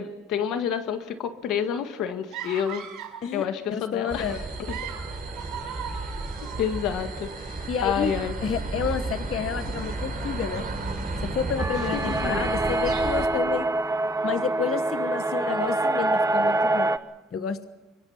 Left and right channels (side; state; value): both; normal; correlation 0.55